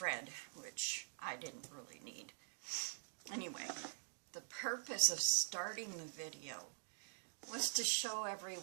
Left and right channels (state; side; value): silent; left; digital silence